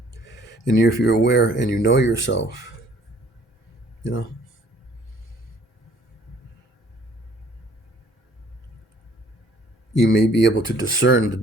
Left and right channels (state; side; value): normal; both; correlation 0.58